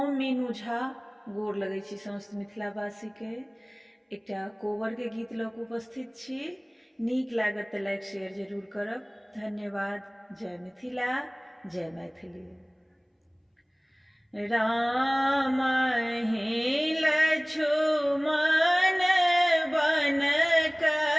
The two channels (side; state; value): both; identical; correlation 1.00